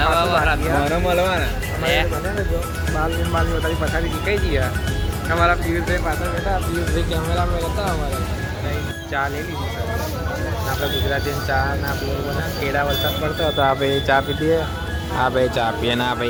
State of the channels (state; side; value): identical; both; correlation 1.00